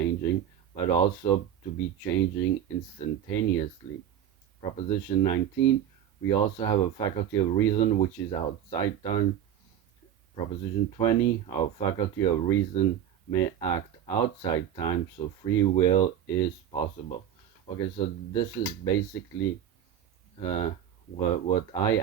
but also to be changing instantaneously. Proposition 19. We also have a faculty of reason which is outside time. Proposition 20. Our faculty of reason may act outside time, so free will is possible. Okay, so this is basically what I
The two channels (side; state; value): left; quieter; 10.1 dB